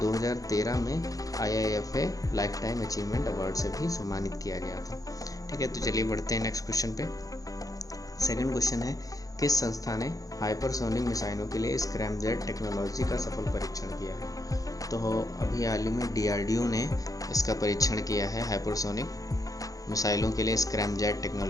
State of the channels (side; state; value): right; late; 0.17 ms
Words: में IIFA life time achievement award से भी सम्मानित किया गया था। ठीक है, तो चलिए बढ़ते हैं नेक्स्ट क्वेश्चन पे। सेकंड क्वेश्चन है, किस संस्था ने हाइपरसोनिक मिसाइलों के लिए स्क्रैमजेट टेक्नोलॉजी का सफल परीक्षण किया है? तो अभी हाल ही में DRDO ने इसका परीक्षण किया है, हाइपरसोनिक मिसाइलों के लिए स्क्रैमजेट